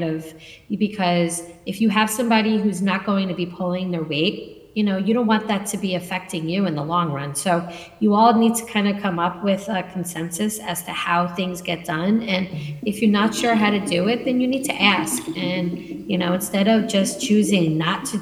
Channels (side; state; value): both; identical; correlation 1.00